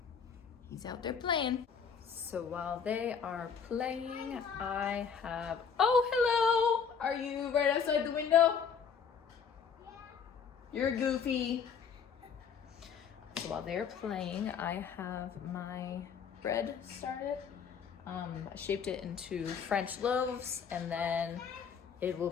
He's out there playing. So while they are playing, I have... Oh, hello! Are you right outside the window? Yeah. You're goofy. So while they're playing, I have my bread started. I shaped it into French loaves, and then it will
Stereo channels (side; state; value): right; quieter; 6.6 dB